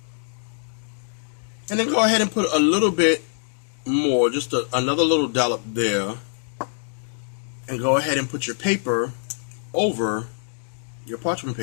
And then go ahead and put a little bit more, just another little dollop there. And go ahead and put your paper over, your parchment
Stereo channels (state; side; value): silent; right; digital silence